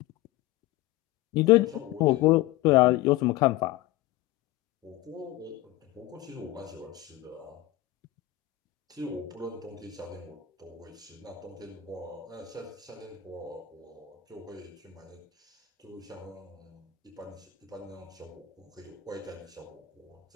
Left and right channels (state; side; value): quieter; right; 15.4 dB